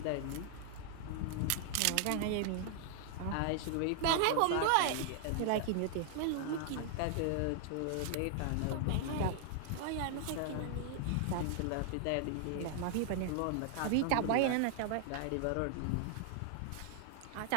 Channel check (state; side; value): different; both; correlation 0.00